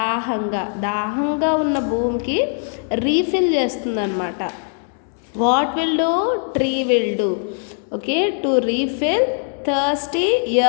ఉన్న భూమికి refill చేస్తుంది అనమాట. What will do? Tree will do. Okay, to refill thirsty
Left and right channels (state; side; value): silent; right; 60 dB below the other